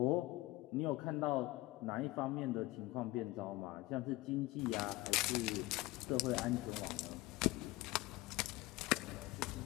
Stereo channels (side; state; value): right; quieter; 19.3 dB